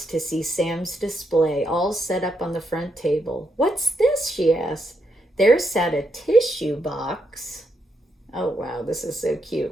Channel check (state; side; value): normal; both; correlation 0.80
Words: to see Sam's display, all set up on the front table. "What's this?" she asked. There sat a tissue box. Oh, wow, this is so